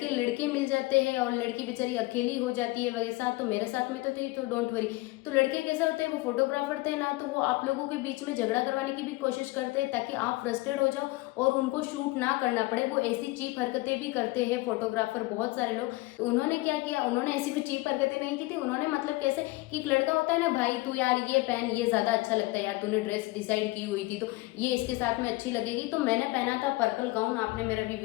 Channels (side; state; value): right; quieter; 21.4 dB